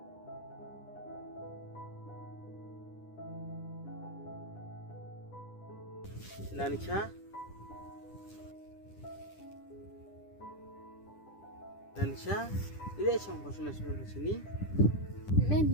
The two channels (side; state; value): right; late; 10 ms